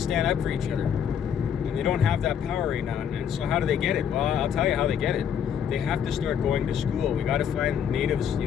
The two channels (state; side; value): quieter; right; 8.3 dB